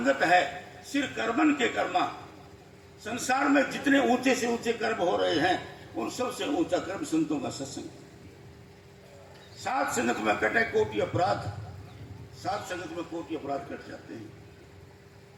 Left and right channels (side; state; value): both; identical; correlation 1.00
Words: है सिर कर्मन के कर्मा। संसार में जितने ऊंचे से ऊंचे कर्म हो रहे हैं, उन सबसे ऊंचा कर्म संतों का सत्संग। साध संगत में कटे कोटि अपराध, साध संगत में कोटि अपराध कट जाते हैं।